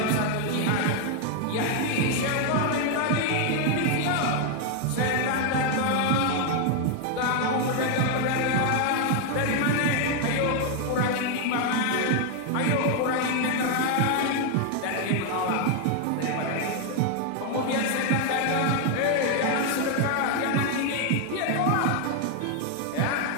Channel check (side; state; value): both; different; correlation 0.01